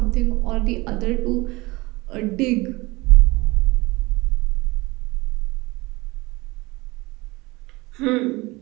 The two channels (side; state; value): left; quieter; 22.7 dB